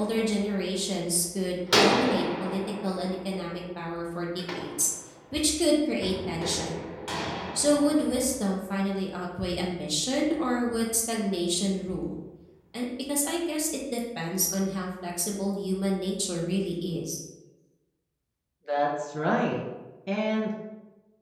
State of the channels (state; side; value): identical; both; correlation 1.00